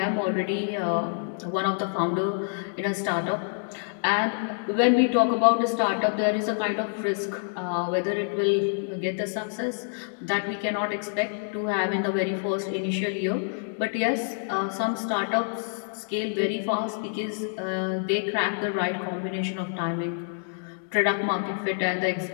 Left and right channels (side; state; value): right; silent; digital silence